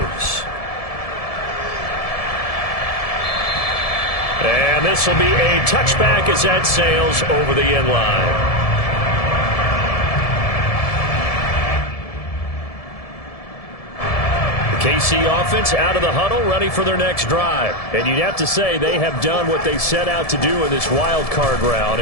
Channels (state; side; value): late; right; 1.7 ms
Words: And this will be a touchback as that sails over the end line. The KC offense out of the huddle, ready for their next drive. And you'd have to say they have done what they set out to do in this wild card round.